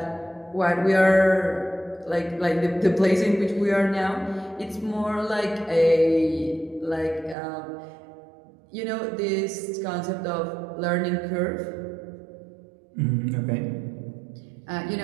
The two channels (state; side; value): drops out; left; at 7.4 s